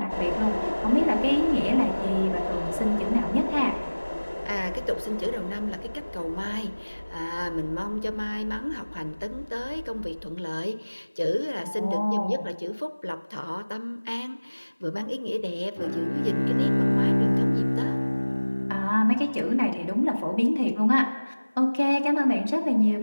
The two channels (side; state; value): both; inverted; correlation -1.00